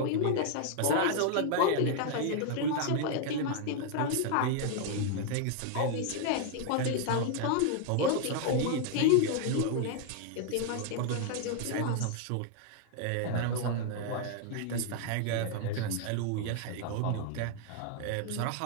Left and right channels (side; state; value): both; different; correlation 0.00